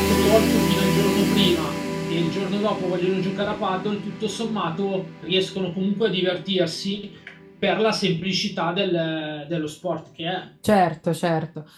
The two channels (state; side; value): identical; both; correlation 1.00